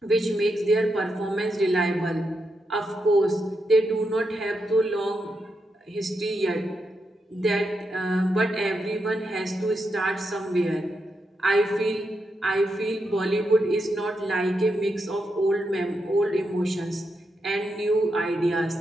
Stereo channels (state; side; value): normal; both; correlation 0.84